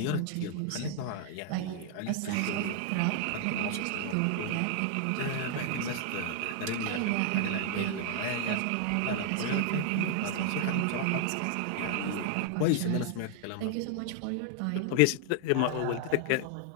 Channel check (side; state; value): both; different; correlation 0.00